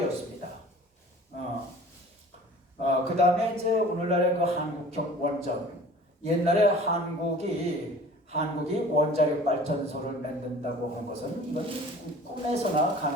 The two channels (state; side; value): normal; both; correlation 0.45